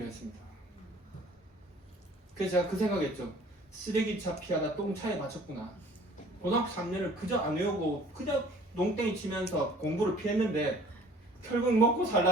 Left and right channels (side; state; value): both; normal; correlation 0.52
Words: 했습니다. 그래서 제가 그 생각했죠. 쓰레기차 피하다 똥차에 맞췄구나. 고등학교 3년을 그저 안 외우고 그저 농땡이 치면서 공부를 피했는데 결국 먹고